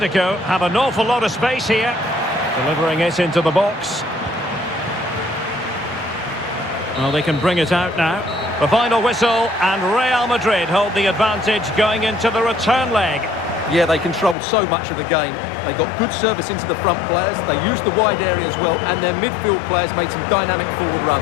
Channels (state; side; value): drops out; right; at 14.4 s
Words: have an awful lot of space here. Delivering it into the box. Well, they can bring it out now. The final whistle, and Real Madrid hold the advantage going into the return leg. Yeah, they controlled so much of the game. They got good service into the front players, they used the wide area as well, and their midfield players made some dynamic forward